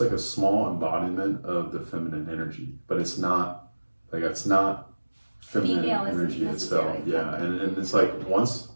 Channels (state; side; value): inverted; both; correlation -1.00